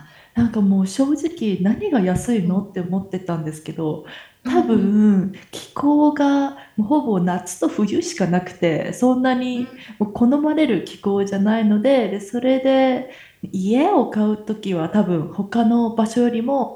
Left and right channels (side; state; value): both; identical; correlation 1.00